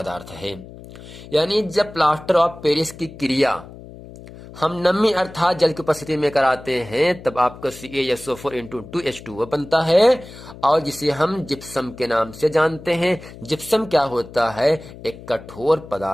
है। यानी जब प्लास्टर ऑफ पेरिस की क्रिया हम नमी अर्थात जल की उपस्थिति में कराते हैं तब आपका CaSO4 इंटू 2H2O बनता है, और जिसे हम जिप्सम के नाम से जानते हैं। जिप्सम क्या होता है? एक कठोर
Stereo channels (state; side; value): noise; left; hum, 17 dB below the sound